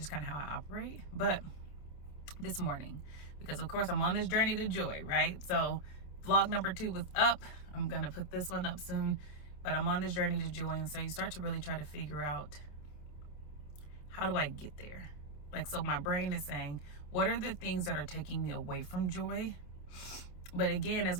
kind of how I operate. But this morning, because of course I'm on this journey to joy, right? So vlog number 2 was up. I'm going to put this one up soon. But I'm on this journey to joy. And so you start to really try to figure out, how do I get there? Like, so my brain is saying, what are the things that are taking me away from joy? But again, as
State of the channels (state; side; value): late; right; 28 ms